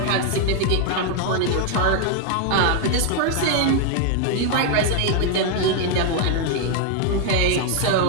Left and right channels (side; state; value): both; different; correlation 0.00